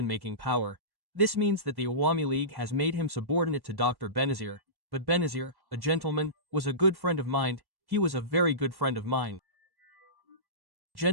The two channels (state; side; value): late; left; 1.1 ms